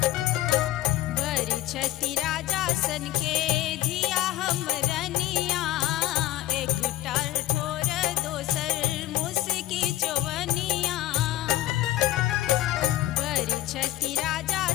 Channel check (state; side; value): quieter; right; 14.6 dB